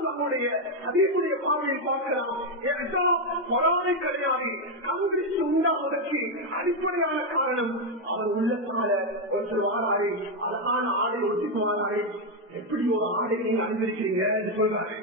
நம்முடைய அதேபுடைய பார்வையை பார்க்கலாம். பொறாமை கிடையாது, கண்பிடிச்சு உண்டாவதற்கு அடிப்படையான காரணம் அவன் உள்ளத்தால ஒருத்தர் வாராரு, அழகான ஆடை ஒட்டிக்கு வாராரு. எப்படி ஒரு ஆடை நீங்க அனுபவிக்கிறீங்க என்று சொல்றாரு.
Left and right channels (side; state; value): both; normal; correlation 0.04